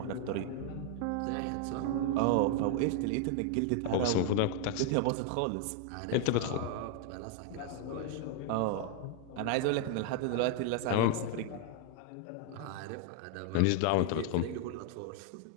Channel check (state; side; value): different; both; correlation 0.00